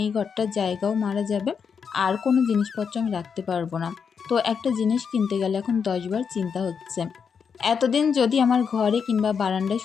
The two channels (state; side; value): quieter; right; 6.4 dB